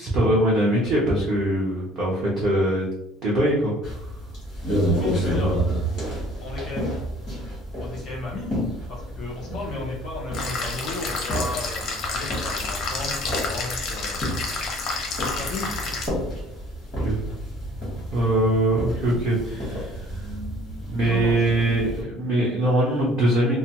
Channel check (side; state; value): both; normal; correlation 0.55